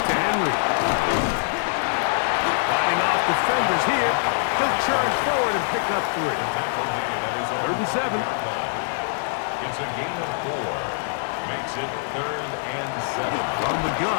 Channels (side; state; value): right; silent; digital silence